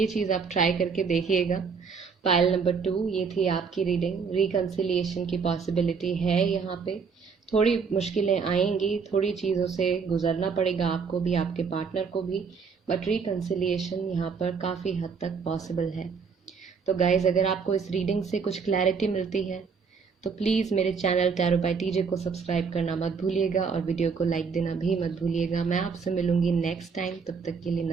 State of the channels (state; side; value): quieter; left; 5.6 dB